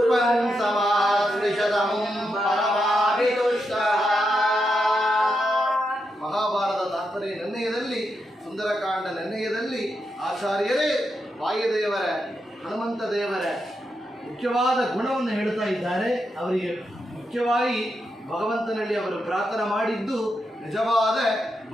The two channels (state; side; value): normal; both; correlation 0.84